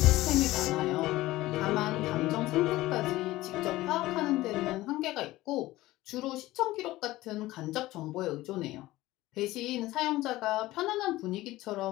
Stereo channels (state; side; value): quieter; right; 17.5 dB